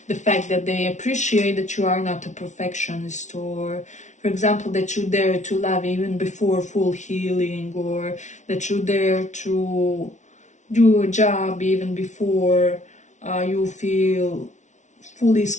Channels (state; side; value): late; right; 0.35 ms